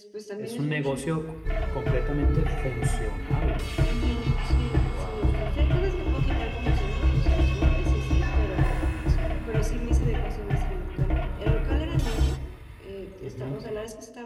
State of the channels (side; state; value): both; identical; correlation 1.00